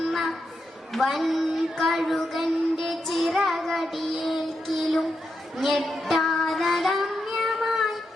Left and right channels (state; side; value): normal; both; correlation 0.85